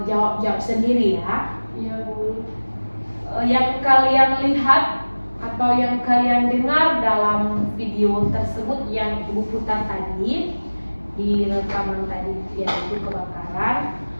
jawab sendiri ya. Iya, Bu. Yang kalian lihat atau yang kalian dengar dalam video tersebut yang Ibu putar tadi di rekaman tadi, yaitu kebakaran,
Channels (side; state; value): both; inverted; correlation -1.00